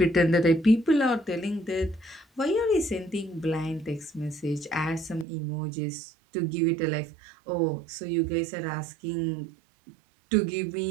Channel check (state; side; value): drops out; left; at 5.2 s